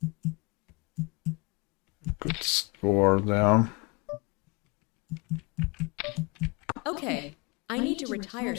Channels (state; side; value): quieter; right; 29.1 dB